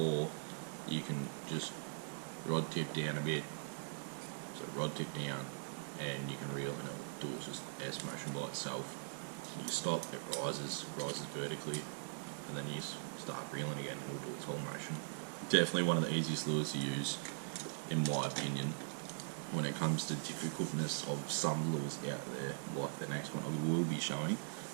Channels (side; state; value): left; silent; digital silence